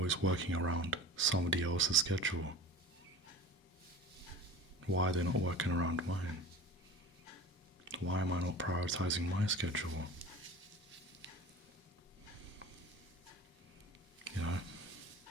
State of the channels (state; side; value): normal; both; correlation 0.37